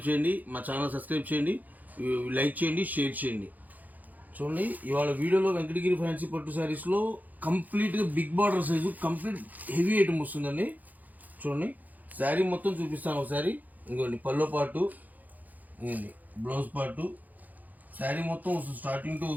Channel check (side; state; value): left; late; 0.081 ms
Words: చేయండి, మా ఛానల్ సబ్స్క్రైబ్ చేయండి, లైక్ చేయండి, షేర్ చేయండి. చూడండి, ఇవాళ వీడియోలో వెంకటగిరి ఫ్యాన్సీ పట్టు శారీస్లో కంప్లీట్గా big border size complete heavy item వస్తుందండి. చూడండి, శారీ మొత్తం చూపిస్తాను ఒకసారి. ఇంకోండి పల్లో పాటు, ఇంకోండి బ్లౌజ్ పాటు, శారీ మొత్తం వస్తుంది. స్టార్టింగ్ టు